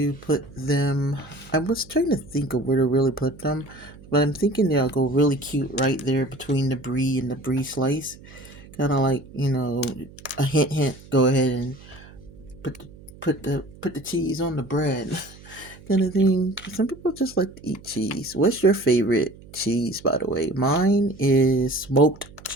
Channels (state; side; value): noise; right; hum, 21 dB below the sound